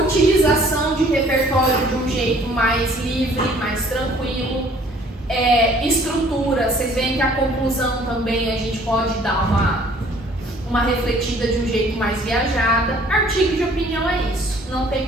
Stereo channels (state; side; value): normal; both; correlation 0.56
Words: de repertório de um jeito mais livre, mais tranquilo. Estrutura, vocês veem que a conclusão também a gente pode dar uma refletida de um jeito mais viajada. Artigo de opinião é isso, não tem